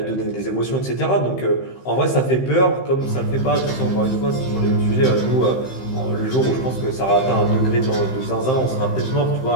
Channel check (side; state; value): right; late; 15 ms